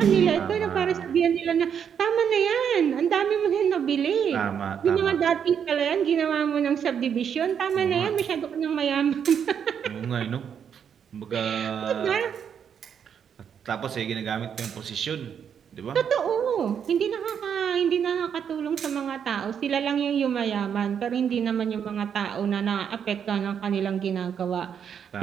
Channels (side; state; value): left; quieter; 7.9 dB